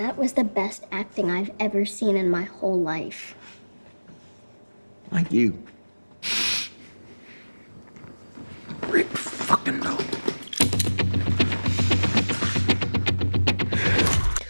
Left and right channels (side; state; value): both; inverted; correlation -1.00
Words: was the best acting I've ever seen in my whole life. Like you. Rick fucking Dalton.